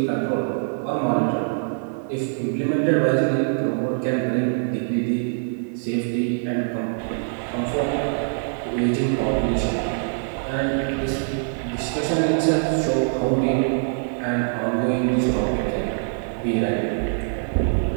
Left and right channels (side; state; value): left; silent; 63 dB below the other